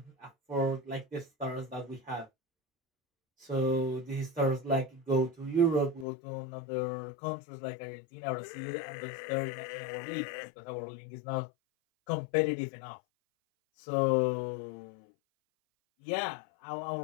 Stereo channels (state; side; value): drops out; right; at 6.1 s